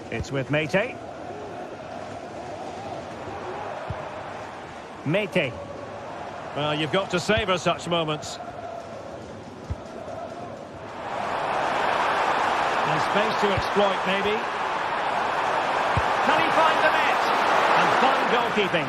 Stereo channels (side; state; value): both; identical; correlation 1.00